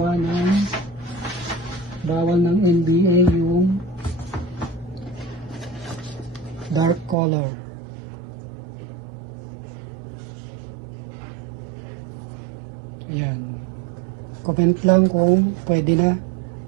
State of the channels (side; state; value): left; drops out; at 7.2 s